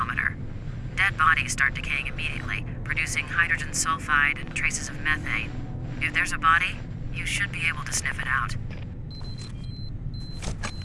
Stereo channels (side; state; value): both; identical; correlation 1.00